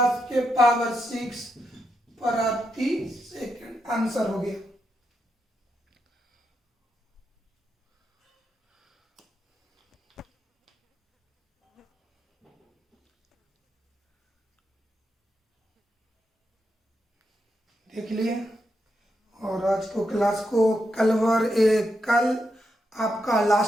के पावर 6 प्रति सेकंड। आंसर हो गया। देख लिए। और आज को क्लास को कल आपका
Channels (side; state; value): both; normal; correlation 0.83